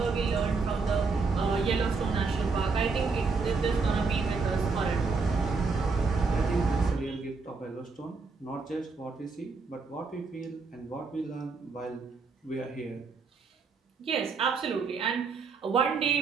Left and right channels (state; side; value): quieter; left; 4.5 dB